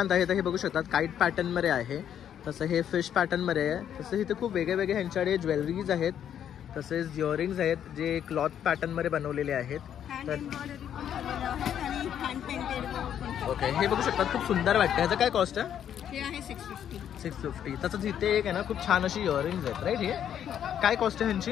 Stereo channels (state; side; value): quieter; right; 9.6 dB